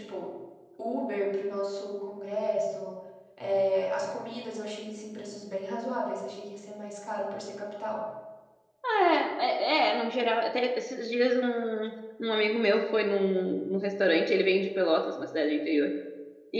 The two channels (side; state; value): both; identical; correlation 1.00